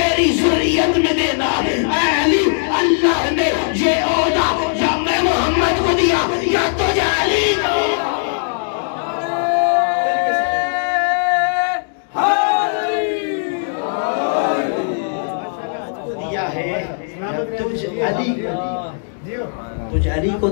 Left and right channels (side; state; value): right; silent; digital silence